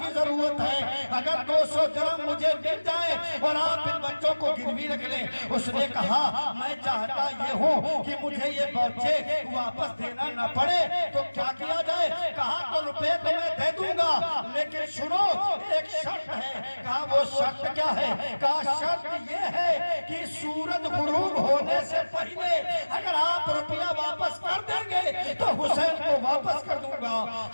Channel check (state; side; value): inverted; both; correlation -1.00